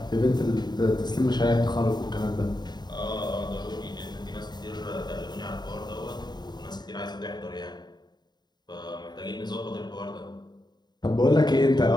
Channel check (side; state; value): right; late; 0.20 ms